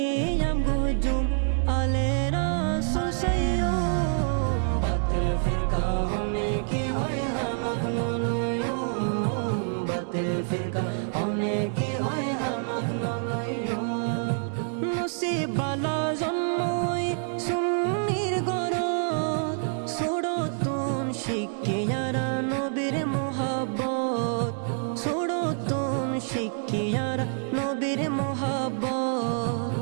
gojum alera susayo batil firqa hone ki hoy hamak naloyo batil firqa hone ki hoy hamak naloyo নসিবালা জন্মই সুন্নির গরত ছোড়তুন শিখিয়ারা নবীর মোহাব্বত ছোড়তুন শিখিয়ারা নবীর মোহাব্বত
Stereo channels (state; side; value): silent; left; 60 dB below the other